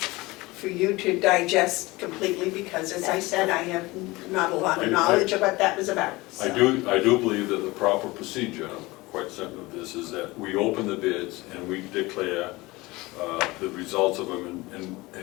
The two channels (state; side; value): quieter; right; 21.6 dB